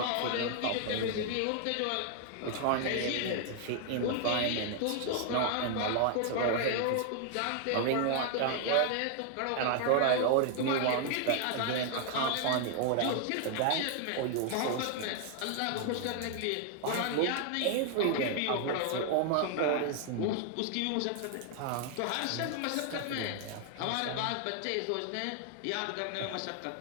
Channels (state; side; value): different; both; correlation 0.00